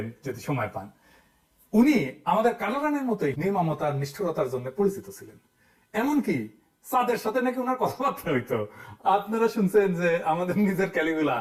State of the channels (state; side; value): identical; both; correlation 1.00